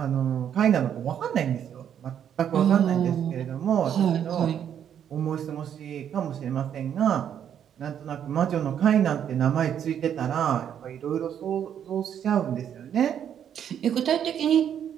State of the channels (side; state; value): left; quieter; 9.2 dB